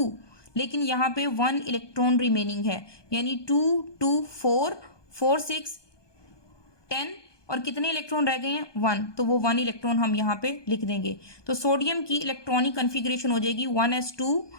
लेकिन यहाँ पे 1 इलेक्ट्रॉन रिमेनिंग है, यानी 2 2 4 4 6 10, और कितने इलेक्ट्रॉन रह गए हैं, 1, तो वो 1 इलेक्ट्रॉन हम यहाँ पे लिख देंगे। तो सोडियम की इलेक्ट्रॉनिक कन्फिग्रेशन हो जाएगी 1s2,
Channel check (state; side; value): late; right; 1.2 ms